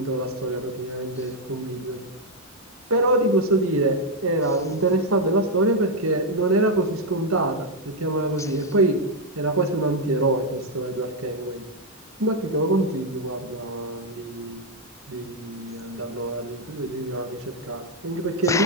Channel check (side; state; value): both; normal; correlation 0.01